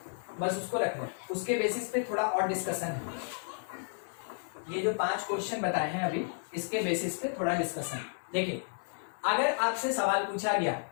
बस उसको रख लें, उसके बेसिस पे थोड़ा और डिस्कशन है। ये जो 5 क्वेश्चन बताए हैं अभी, इसके बेसिस पे थोड़ा डिस्कशन। देखिए अगर आपसे सवाल पूछा गया,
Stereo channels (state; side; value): silent; right; digital silence